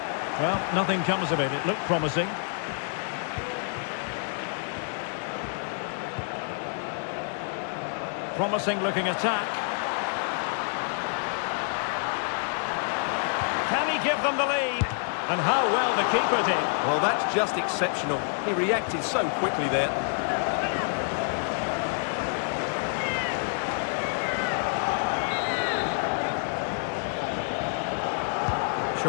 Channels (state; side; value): silent; right; 58 dB below the other